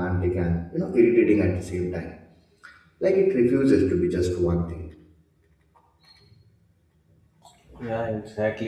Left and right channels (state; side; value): identical; both; correlation 1.00